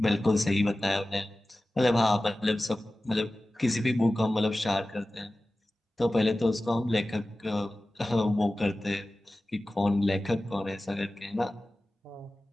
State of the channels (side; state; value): both; normal; correlation 0.96